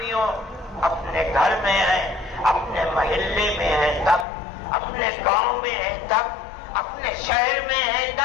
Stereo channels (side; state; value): right; drops out; at 4.2 s